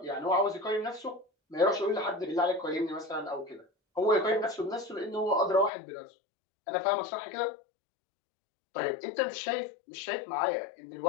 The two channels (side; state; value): right; drops out; at 5.7 s